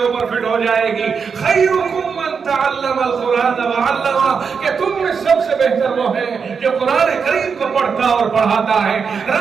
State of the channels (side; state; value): left; quieter; 5.9 dB